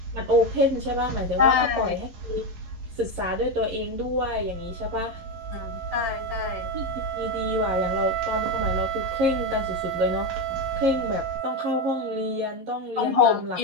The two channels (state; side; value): late; left; 11 ms